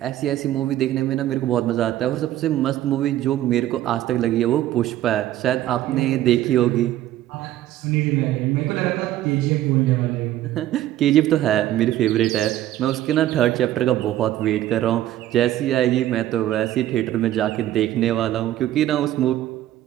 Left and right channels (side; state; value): left; quieter; 13.6 dB